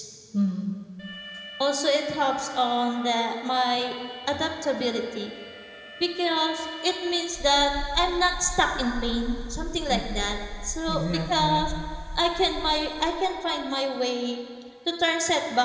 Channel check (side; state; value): both; identical; correlation 1.00